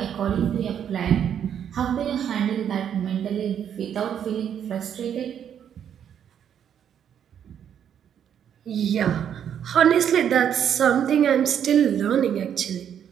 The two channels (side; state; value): left; quieter; 9.0 dB